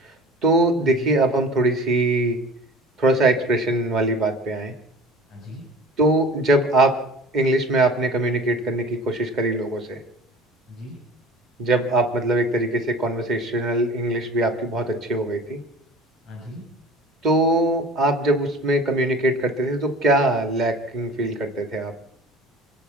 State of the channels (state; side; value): normal; both; correlation 0.42